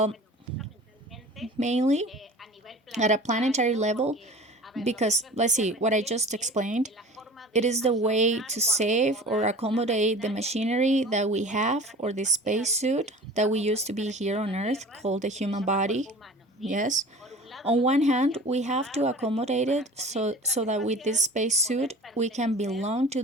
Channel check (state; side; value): normal; both; correlation 0.41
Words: mainly at a planetary level, because let's see, what I just explained, it is the way to save or accommodate the machinery that we have or the spacesuit that we used to be here on Earth called the human body. Yes. On one hand, we have to accommodate it so that with this spacesuit we can belong to